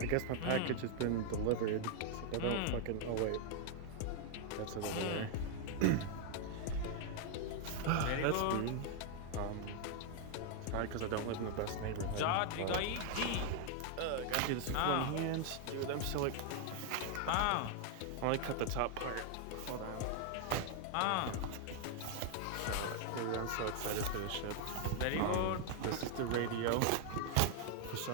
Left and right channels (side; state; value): both; different; correlation 0.00